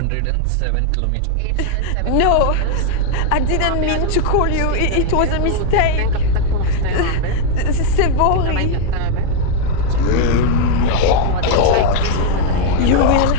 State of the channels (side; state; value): both; different; correlation 0.00